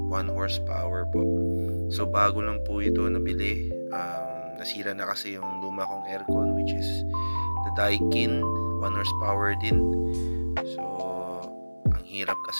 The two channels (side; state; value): both; inverted; correlation -1.00